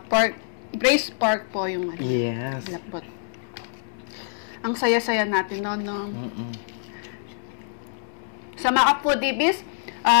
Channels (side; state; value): right; silent; 61 dB below the other